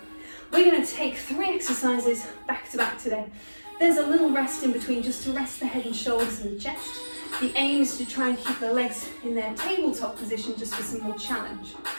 we're going to take 3 exercises back to back today. There's a little rest in between just to rest the head and shoulders and the chest. The aim is to try and keep the legs in their tabletop position just for some more challenge.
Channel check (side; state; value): both; inverted; correlation -1.00